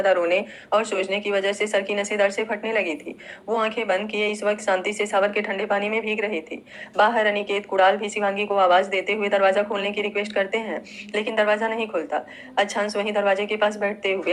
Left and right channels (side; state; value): both; identical; correlation 1.00